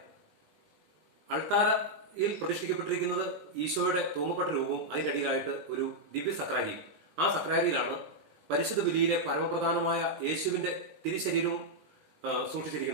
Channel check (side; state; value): left; late; 19 ms